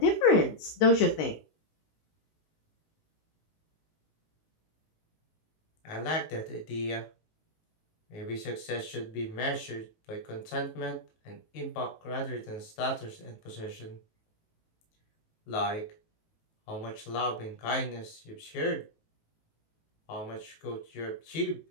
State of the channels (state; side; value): late; right; 19 ms